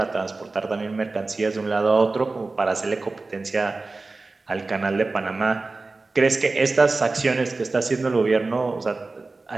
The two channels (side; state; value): left; quieter; 3.6 dB